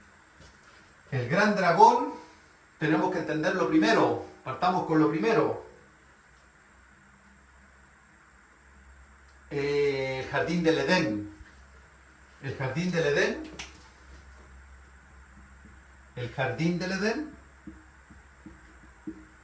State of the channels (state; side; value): identical; both; correlation 1.00